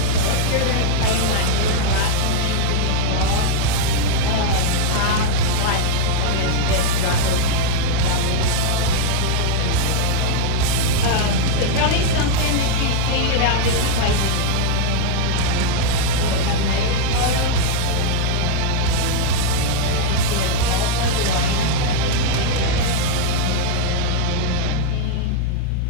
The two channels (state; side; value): different; both; correlation -0.01